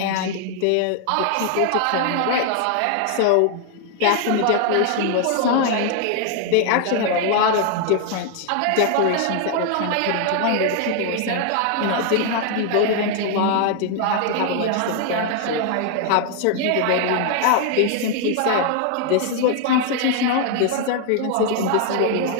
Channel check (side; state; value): both; different; correlation 0.00